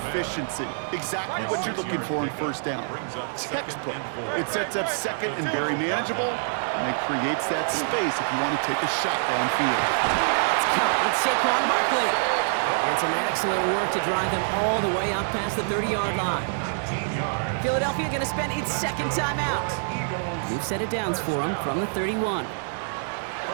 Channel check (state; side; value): silent; left; digital silence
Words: Exactly what you're looking for in first down. Textbook. It sets up second and very manageable, and it creates that space if you want to take a shot downfield. It's caught. It's Saquon Barkley. And some excellent work to drive them all the way up past the 30-yard line. Philadelphia going to spend its second timeout. We've set it downs for them from the 31.